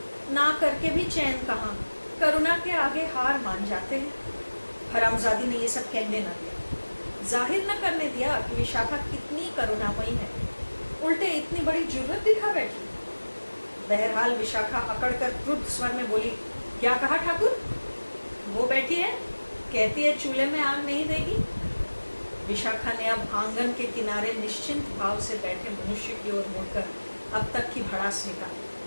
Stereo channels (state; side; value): inverted; both; correlation -1.00